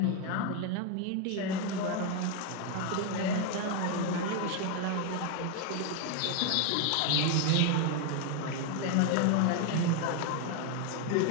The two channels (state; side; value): different; both; correlation 0.01